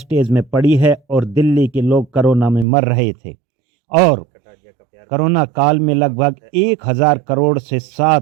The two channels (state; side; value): drops out; left; at 2.7 s